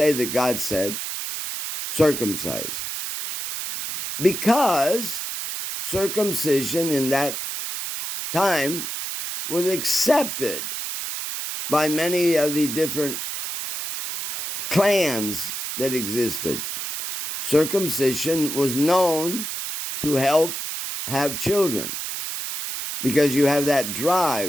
that God said, circumcise. Because circumcision in that time was accepted by many of the different clans that existed. Circumcision was known to help have children because you have that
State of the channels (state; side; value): noise; right; hiss, 5 dB below the sound